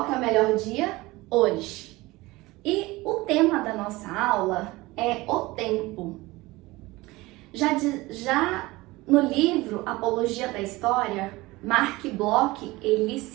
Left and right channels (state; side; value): quieter; left; 20.6 dB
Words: que é o melhor dia? Hoje. E o tema da nossa aula é o tempo. Já no livro Apologia da História, Mark Bloch, ele